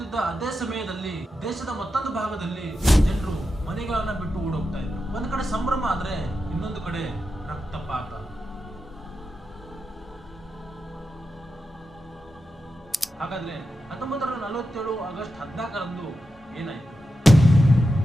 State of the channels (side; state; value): both; normal; correlation 0.89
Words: ಅದೇ ಸಮಯದಲ್ಲಿ ದೇಶದ ಮತ್ತೊಂದು ಭಾಗದಲ್ಲಿ ಜನರು ಮನೆಗಳನ್ನ ಬಿಟ್ಟು ಓಡೋಗ್ತಾ ಇದ್ರು. ಒಂದ್ ಕಡೆ ಸಂಭ್ರಮ ಆದ್ರೆ ಇನ್ನೊಂದು ಕಡೆ ರಕ್ತಪಾತ. ಹಾಗಾದ್ರೆ 1947 ಆಗಸ್ಟ್ 14ರಂದು ಏನಾಯ್ತು?